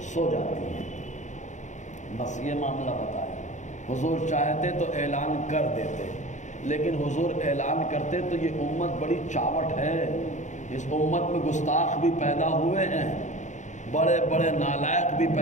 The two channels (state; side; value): late; right; 0.35 ms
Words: سو جاتی ہے، بس یہ معاملہ بتایا۔ حضور چاہتے تو اعلان کر دیتے، لیکن حضور اعلان کرتے تو یہ امت بڑی چاوٹ ہے، اس امت میں گستاخ بھی پیدا ہوئے ہیں، بڑے بڑے نالائق بھی